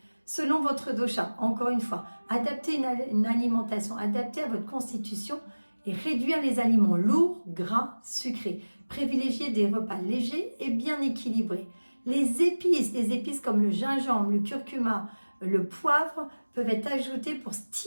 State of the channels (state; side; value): inverted; both; correlation -1.00